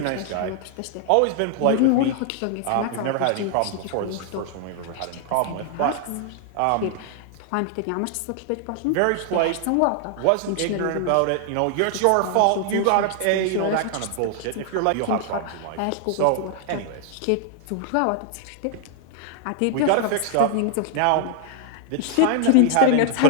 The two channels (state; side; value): different; both; correlation 0.00